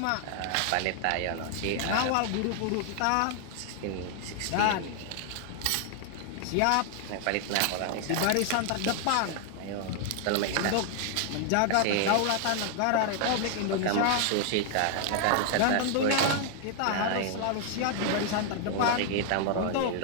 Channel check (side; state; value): both; different; correlation 0.00